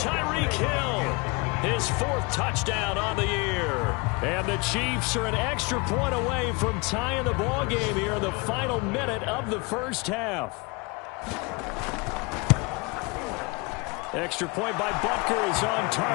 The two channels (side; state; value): right; quieter; 27.9 dB